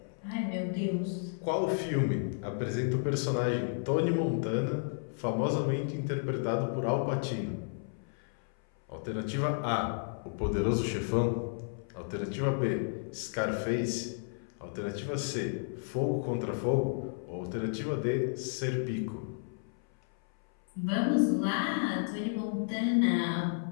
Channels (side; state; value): right; silent; 56 dB below the other